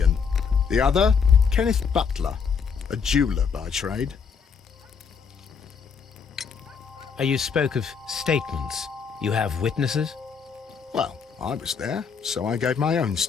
The other, Kenneth Butler, a jeweller by trade. You spoke of statements. You have witnesses? Well, I was there, so I gave my own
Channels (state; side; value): quieter; right; 6.1 dB